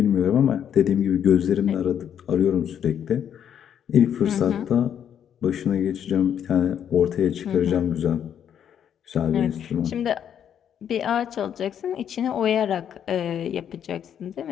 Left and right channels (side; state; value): right; quieter; 9.0 dB